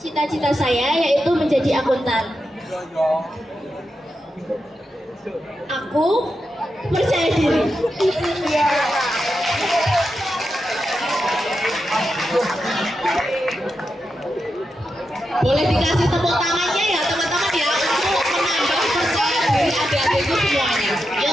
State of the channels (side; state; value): both; normal; correlation 0.88